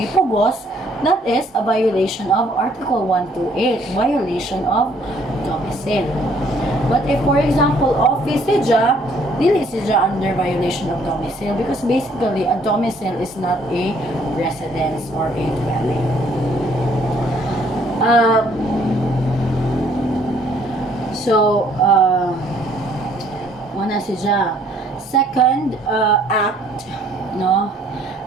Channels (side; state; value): both; normal; correlation 0.63